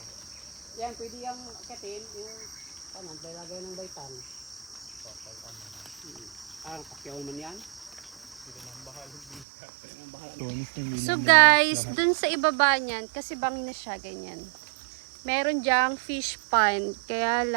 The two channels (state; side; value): drops out; left; at 9.5 s